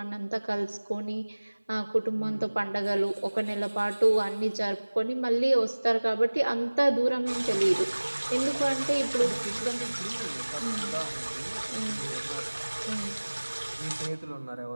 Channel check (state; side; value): inverted; both; correlation -1.00